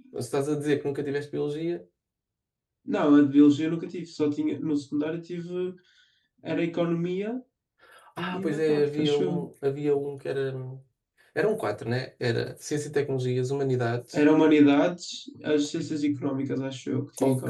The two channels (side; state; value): both; identical; correlation 1.00